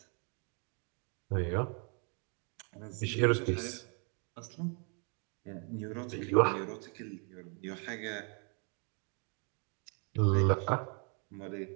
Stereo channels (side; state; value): left; quieter; 37.7 dB